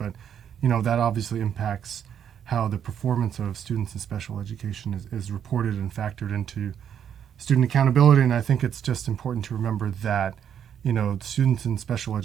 that obviously impacts how the performance of students in special education is reported and factored into student accountability. And I think it's just important to remember that, students in special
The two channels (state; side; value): quieter; left; 8.8 dB